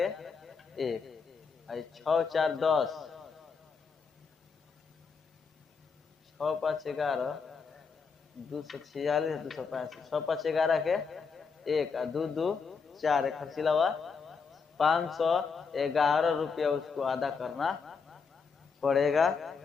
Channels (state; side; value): quieter; right; 5.3 dB